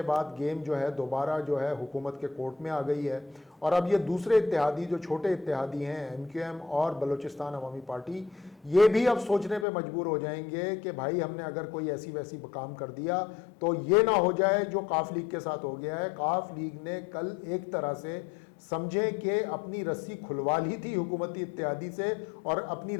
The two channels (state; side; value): drops out; right; at 9.7 s